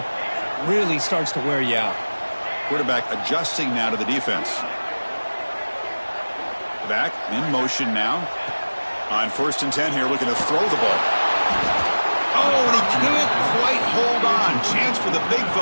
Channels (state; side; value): inverted; both; correlation -1.00